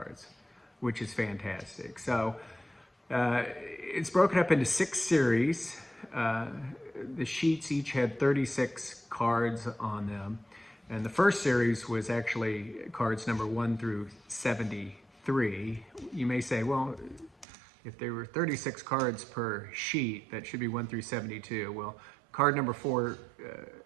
which is fantastic. So it's broken up into 6 series. The sheets each had 36 cards on them. And the first series was actually cards number 1 through 73. You may say, well, if there were 36 cards per sheet, that should be 1 through 72. Well, card number 4,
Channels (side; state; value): left; drops out; at 17.4 s